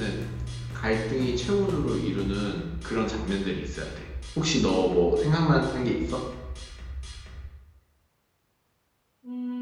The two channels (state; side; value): identical; both; correlation 1.00